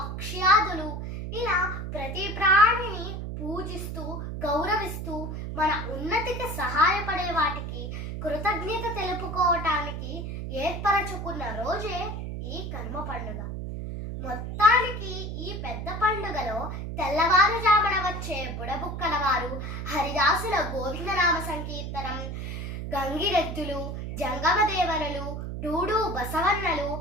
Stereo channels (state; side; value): noise; right; hum, 5 dB below the sound